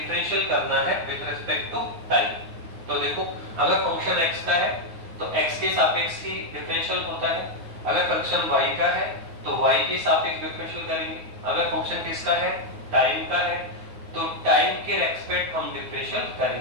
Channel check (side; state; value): left; late; 9.6 ms